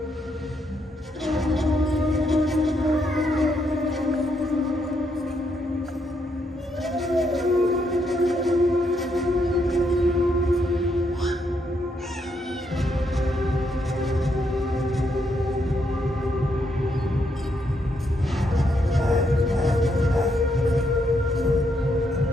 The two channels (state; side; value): normal; both; correlation 0.77